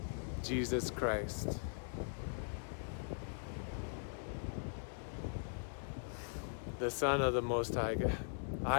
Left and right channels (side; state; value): right; silent; 51 dB below the other